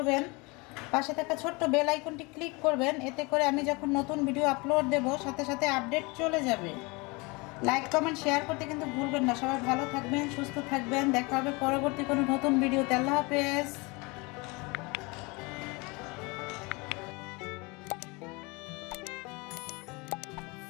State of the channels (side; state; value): right; quieter; 26.8 dB